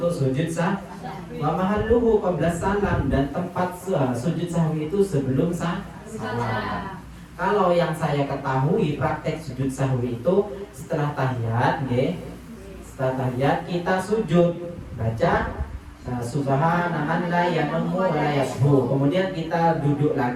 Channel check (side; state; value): both; identical; correlation 1.00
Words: sujud sahwi. Wa mahalluhu qabla salam, dan tempat sujud sahwi itu sebelum salam. Kalau yang saya ketahui praktek sujud sahwi itu setelah tahiyat, nggih. Setelah tahiyat kita sujud, baca subhana man la yanumu wa la yasbu. Kemudian kita duduk